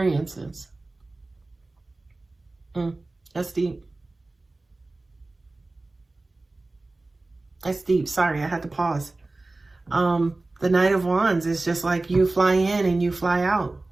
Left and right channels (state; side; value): quieter; left; 3.1 dB